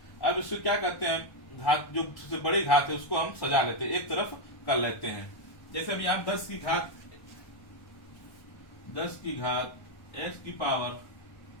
अब इसको क्या करते हैं, घात जो सबसे बड़ी घात है उसको हम सजा लेते हैं, एक तरफ कर लेते हैं। जैसे अभी आप 10 की घात x की पावर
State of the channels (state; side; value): late; right; 1.1 ms